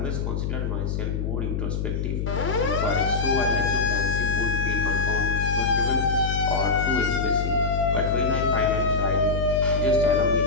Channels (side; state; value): left; noise; hum, 1 dB below the sound